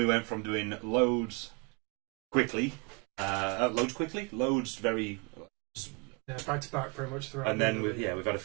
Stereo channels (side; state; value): left; quieter; 31.9 dB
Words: went from doing loads very back to back pretty much throughout. and then we've had a